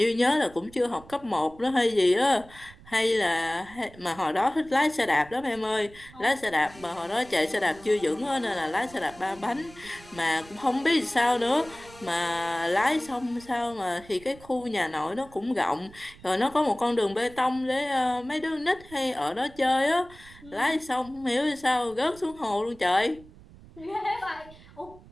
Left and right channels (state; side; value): noise; right; rumble, 22 dB below the sound